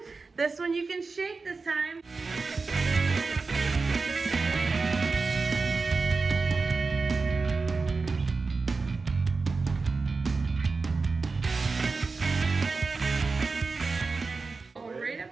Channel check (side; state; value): left; quieter; 4.2 dB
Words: This one you can shake this time.